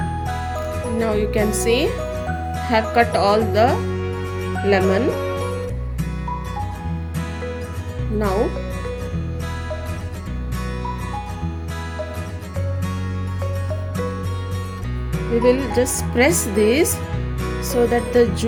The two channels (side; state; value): both; identical; correlation 1.00